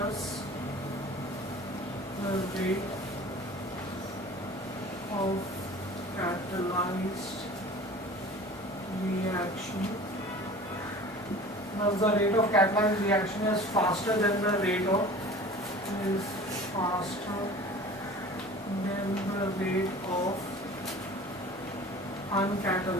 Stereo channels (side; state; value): both; normal; correlation 0.42